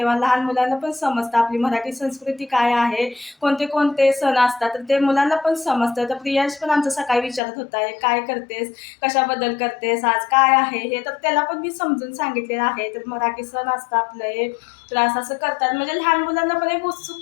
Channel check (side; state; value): right; drops out; at 7.4 s